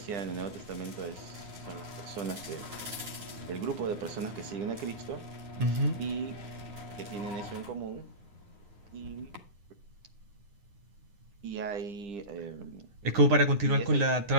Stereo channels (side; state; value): left; late; 9.4 ms